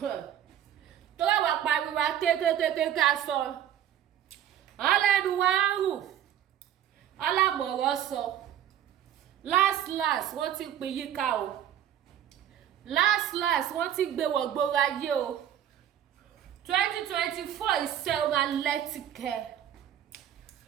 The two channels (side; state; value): left; quieter; 10.6 dB